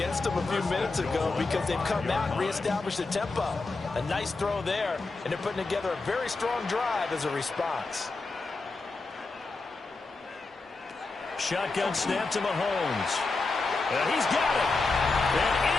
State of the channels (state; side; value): quieter; right; 3.7 dB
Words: them a few minutes ago because they've come out and reestablished the tempo. A nice throw there, and they're putting together a very strong drive as a response. Shotgun snap to Mahomes. And he's got it. And